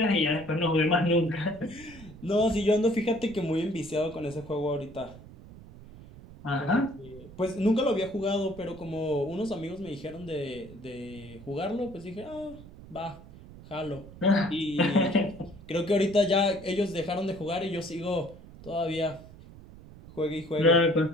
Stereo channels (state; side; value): noise; right; rumble, 18 dB below the sound